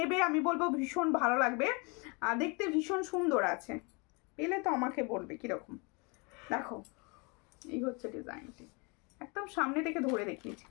আমি বলবো ভীষণ ভালো লাগবে, আর দেখতে ভীষণ সুন্দর আছে, পেলে তো আমাকে বলবে কিরকম। দেখো এই হচ্ছে ডিজাইনটি, একদম সামনে থেকে ধরে দেখিয়েছি,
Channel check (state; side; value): quieter; right; 30.6 dB